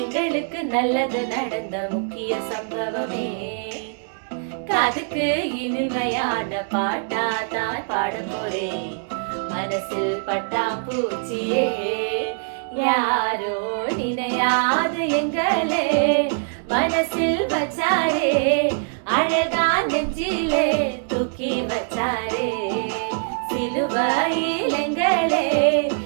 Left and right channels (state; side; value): silent; left; 63 dB below the other